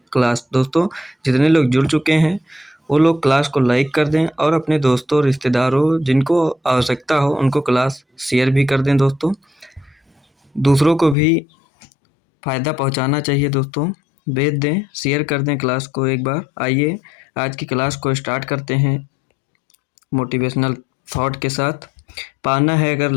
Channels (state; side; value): drops out; right; at 11.2 s